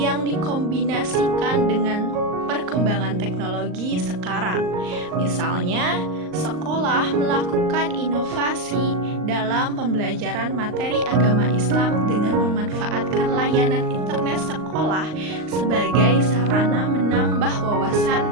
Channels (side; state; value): left; late; 39 ms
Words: dikombinasikan dengan perkembangan teknologi sekarang. Misalnya, sekolah melakukan inovasi dalam pembelajaran materi agama Islam dengan memanfaatkan layanan internet sekolah sebagai sarana menambah